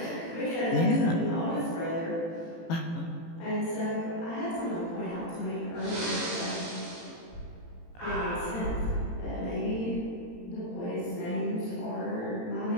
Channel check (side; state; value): right; late; 18 ms